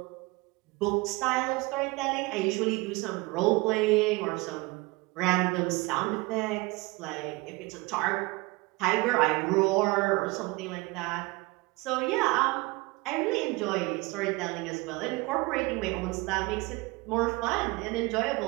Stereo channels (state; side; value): quieter; left; 24.1 dB